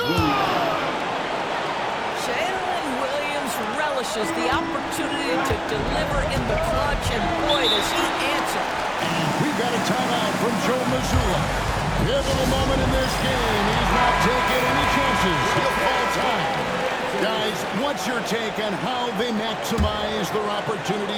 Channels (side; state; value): both; identical; correlation 1.00